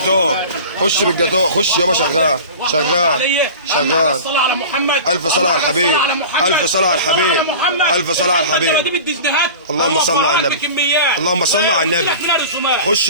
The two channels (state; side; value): inverted; both; correlation -0.36